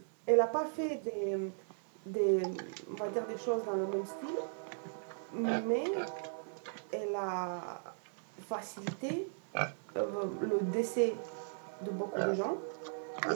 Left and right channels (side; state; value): left; silent; digital silence